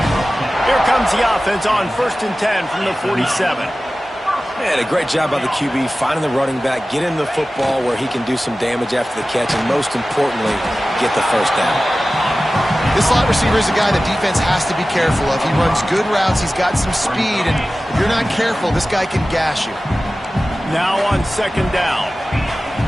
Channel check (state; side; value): normal; both; correlation 0.96